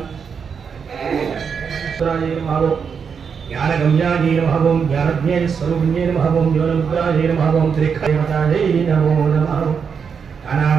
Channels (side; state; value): left; quieter; 6.4 dB